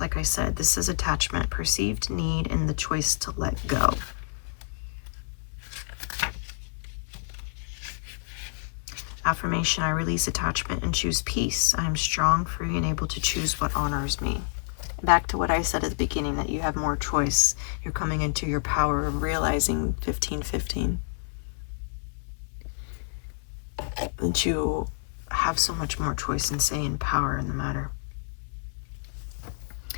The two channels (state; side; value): silent; right; 59 dB below the other